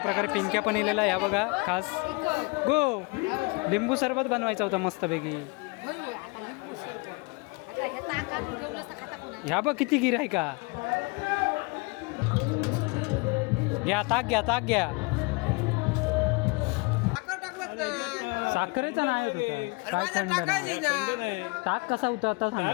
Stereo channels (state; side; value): quieter; right; 28.7 dB